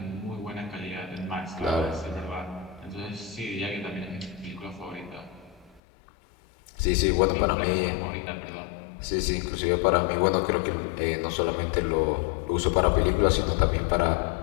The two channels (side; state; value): right; drops out; at 5.8 s